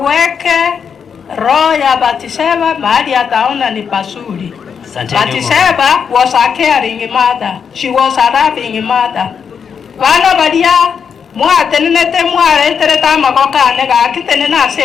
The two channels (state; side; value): quieter; right; 6.8 dB